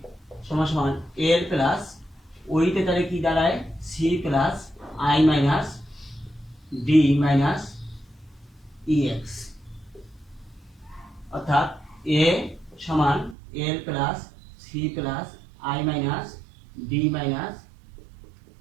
সমান সমান এল প্লাস ওইতে তাহলে কি দাঁড়ায় C plus I minus D minus E X. অর্থাৎ এ সমান L plus C plus I minus D minus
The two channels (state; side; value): drops out; left; at 13.4 s